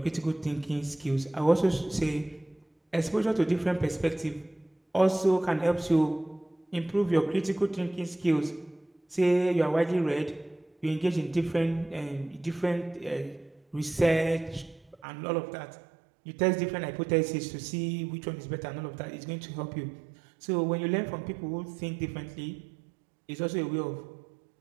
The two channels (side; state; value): left; drops out; at 15.0 s